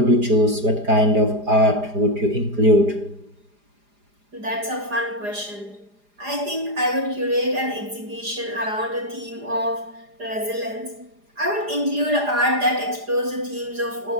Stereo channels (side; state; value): left; late; 4.9 ms